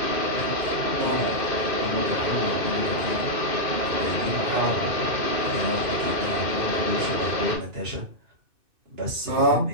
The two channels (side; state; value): left; late; 2.6 ms